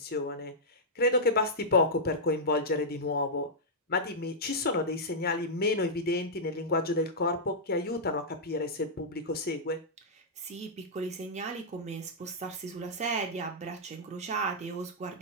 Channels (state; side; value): normal; both; correlation -0.09